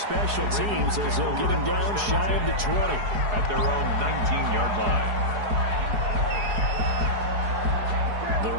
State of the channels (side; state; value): left; late; 4.8 ms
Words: teams as they'll get him down shy of the 20. At their own 19-yard line. The